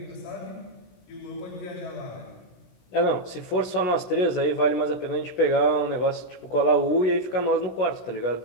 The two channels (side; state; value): right; late; 16 ms